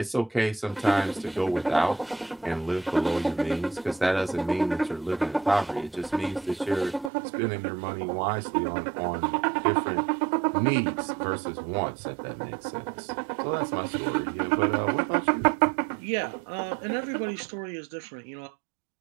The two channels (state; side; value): drops out; left; at 7.1 s